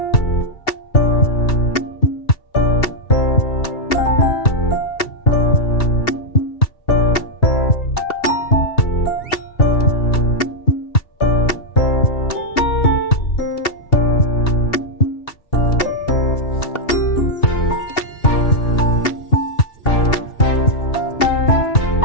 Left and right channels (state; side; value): late; right; 2.7 ms